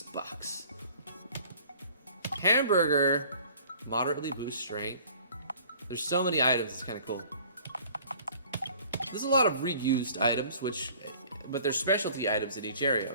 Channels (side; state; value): both; inverted; correlation -0.52